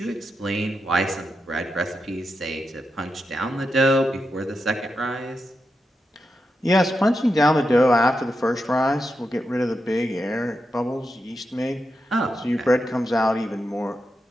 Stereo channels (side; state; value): both; normal; correlation 0.87